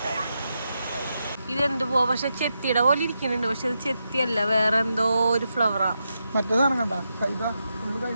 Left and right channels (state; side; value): inverted; both; correlation -0.86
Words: ഇതെന്ത് പോ പക്ഷെ ചെത്തിയുടെ പോലെ ഇരിക്കുന്നുണ്ട് പക്ഷെ ഇത് ചെത്തിയല്ല വേറെ എന്തോ ഒരു ഫ്ലവറാ മറ്റേ സാധനം കണ്ട